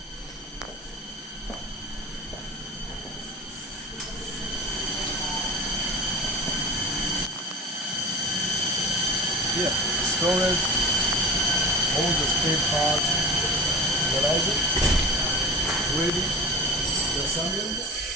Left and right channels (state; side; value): normal; both; correlation 0.35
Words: Here, storage, all the spare parts, realize it, ready for assembling.